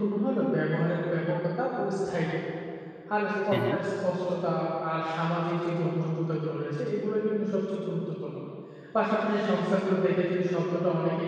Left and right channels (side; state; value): both; identical; correlation 1.00